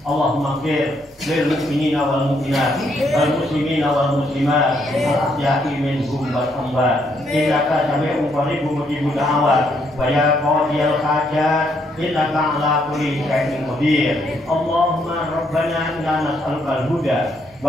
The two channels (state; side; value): normal; both; correlation 0.73